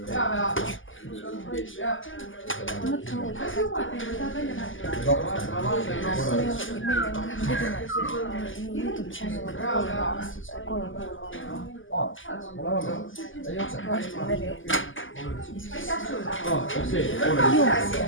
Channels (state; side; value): late; right; 0.58 ms